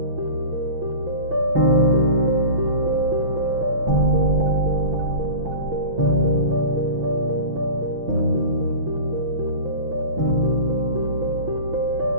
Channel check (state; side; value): late; left; 6.1 ms